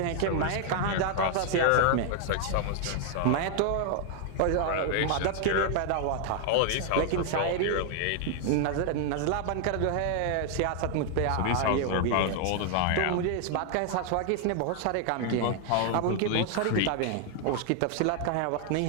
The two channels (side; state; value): both; different; correlation 0.00